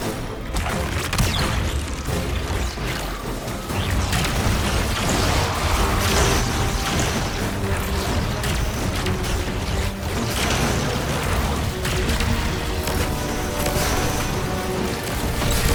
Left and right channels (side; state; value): both; identical; correlation 1.00